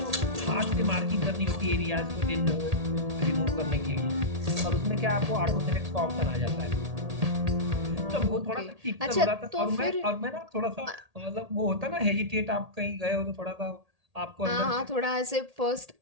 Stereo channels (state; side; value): late; left; 1.8 ms